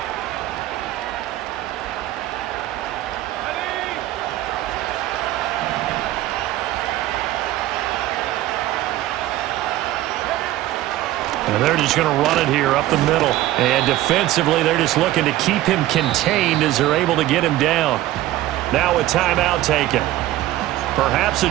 And they're just going to run it here up the middle. And defensively, they're just looking to keep him contained as they're able to get him down. Now a timeout taken. Perhaps a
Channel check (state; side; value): quieter; left; 15.1 dB